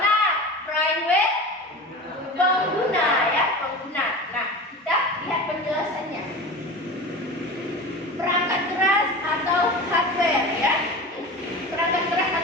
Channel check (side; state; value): both; normal; correlation 0.32